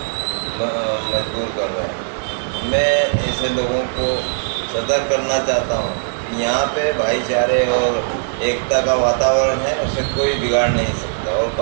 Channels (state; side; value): silent; left; digital silence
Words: मजबूर कर रहे हैं। मैं ऐसे लोगों को सतर्क करना चाहता हूँ कि यहाँ पे भाईचारे और एकता का वातावरण है, उसे कोई बिगाड़ नहीं सकता। और